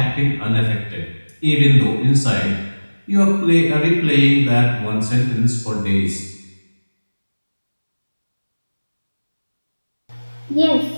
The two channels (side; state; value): both; inverted; correlation -1.00